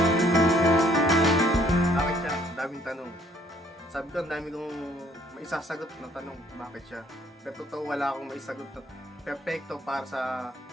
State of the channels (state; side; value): normal; both; correlation 0.63